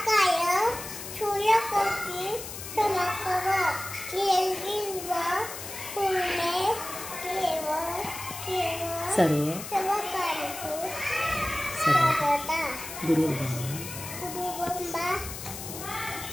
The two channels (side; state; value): left; noise; hiss, 9 dB below the sound